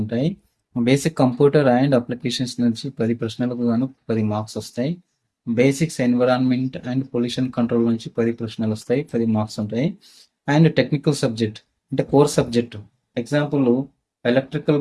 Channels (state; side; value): identical; both; correlation 1.00